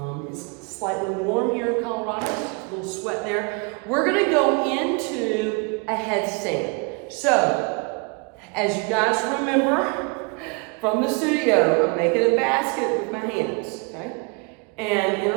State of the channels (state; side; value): quieter; left; 31.8 dB